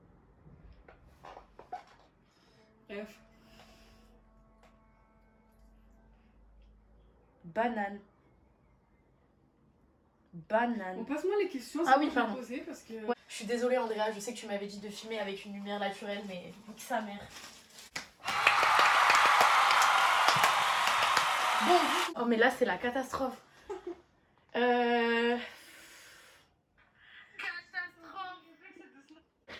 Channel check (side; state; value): both; identical; correlation 1.00